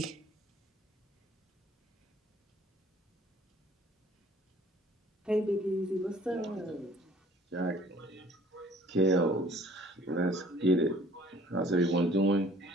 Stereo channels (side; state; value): both; normal; correlation 0.55